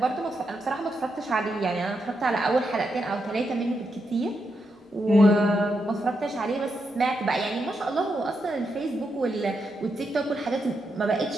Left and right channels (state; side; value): normal; both; correlation 0.83